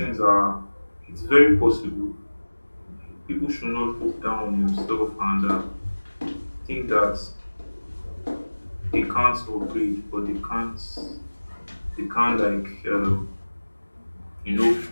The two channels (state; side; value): inverted; both; correlation -1.00